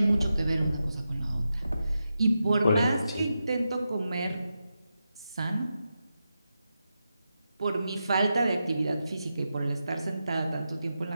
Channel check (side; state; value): both; inverted; correlation -0.89